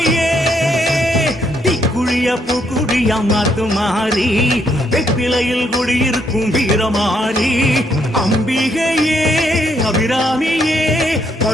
தீக்குழிய பூக்குழியா மாத்து மாறி வெப்பிலையில் குடியிருக்கும் வீரமாறி அம்பிகையே அபிராமியே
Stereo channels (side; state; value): both; normal; correlation 0.73